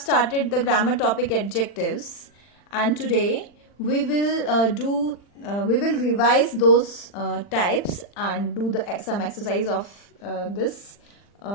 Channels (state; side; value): late; right; 40 ms